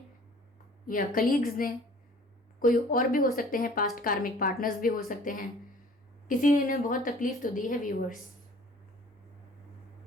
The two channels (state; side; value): normal; both; correlation 0.50